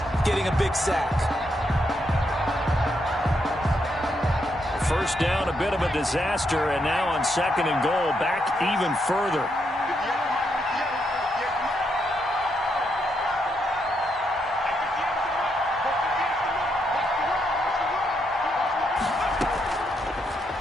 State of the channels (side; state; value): both; normal; correlation 0.79